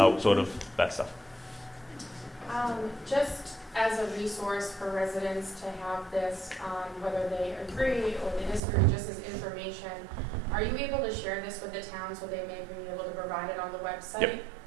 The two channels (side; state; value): left; drops out; at 8.6 s